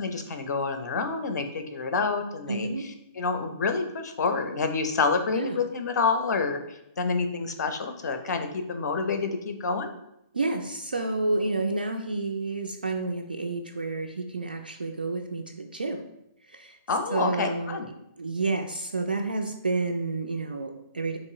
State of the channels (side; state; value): both; inverted; correlation -0.51